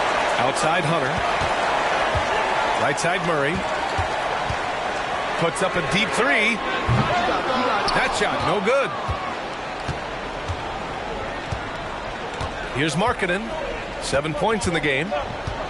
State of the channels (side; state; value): both; identical; correlation 1.00